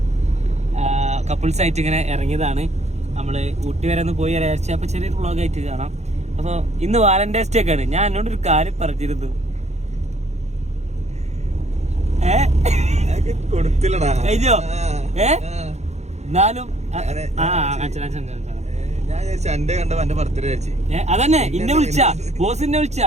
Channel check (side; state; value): left; late; 0.32 ms